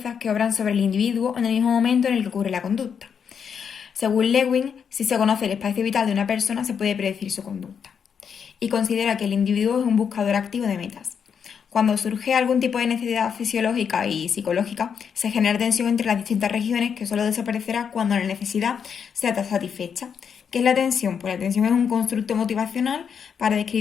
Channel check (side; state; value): right; quieter; 7.1 dB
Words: que obran sobre el individuo en el mismo momento en el que ocurre la conducta. Según Lewin, si se conoce el espacio vital de una persona, se puede predecir su conducta. Y considera que el individuo es un buscador activo de metas. Cuando surge algún tipo de necesidad fisiológica y psicológica, se genera tensión entre las distintas regiones que solo desaparecerá cuando la necesidad sea satisfecha. ¿Qué es la tensión? Pues la tensión es un constructo motivacional para